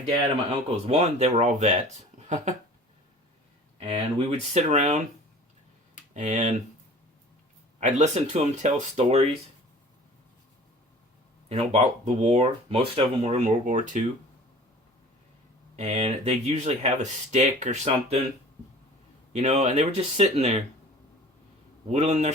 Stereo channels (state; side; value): normal; both; correlation 0.44